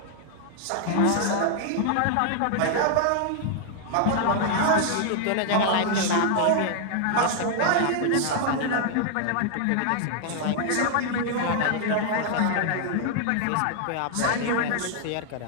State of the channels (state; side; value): different; both; correlation 0.00